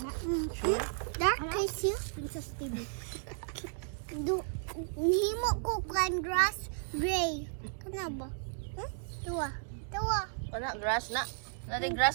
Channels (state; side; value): silent; left; digital silence